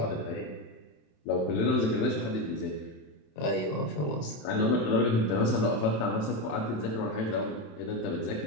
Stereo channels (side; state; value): right; late; 27 ms